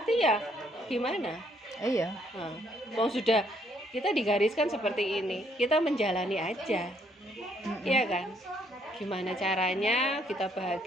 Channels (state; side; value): normal; both; correlation 0.69